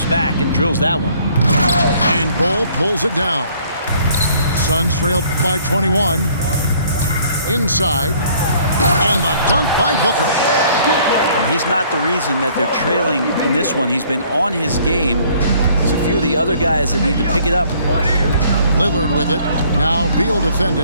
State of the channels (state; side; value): inverted; both; correlation -0.59